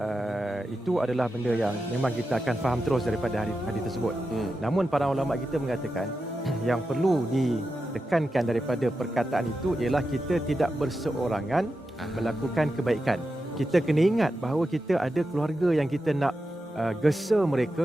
Itu adalah benda yang memang kita akan faham terus daripada hadis tersebut. Namun para ulama kita mengatakan yang perlu ditekankan daripada perkataan itu ialah kita tidak berseorangan melakukan kebaikan. Kita kena ingat bahawa kita ada keluarga yang kita nak gesa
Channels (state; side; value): normal; both; correlation 0.89